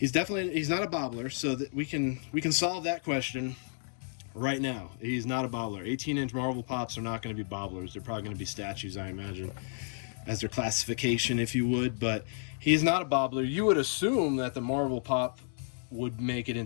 not a bobbler. So that we can solve that question right now. He's not a bobbler. 18-inch Marvel Pops are not going to be bobblers. They're probably going to be statues, I imagine, as their classification, if you would. But he's not a bobbler. You would assume that the Marvel Pop would make it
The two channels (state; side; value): silent; right; digital silence